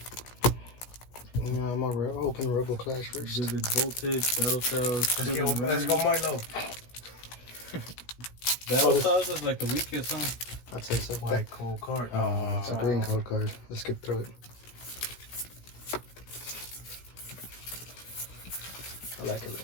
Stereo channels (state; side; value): late; right; 16 ms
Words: Yeah, I'm gonna open Robo Clash first. Vivid Voltage, Battle Styles. Let's go Milo. Battle Styles is like the weakest, huh? I'd say so. White cold card. It's a green code card. Let's skip through it. I like